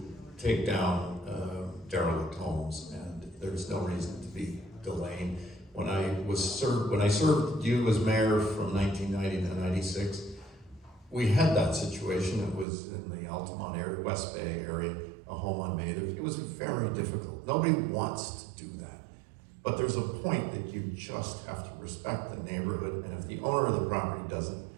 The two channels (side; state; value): left; drops out; at 12.7 s